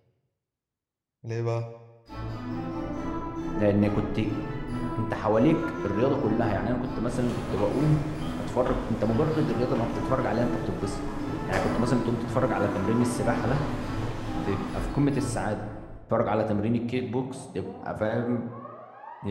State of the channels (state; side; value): identical; both; correlation 1.00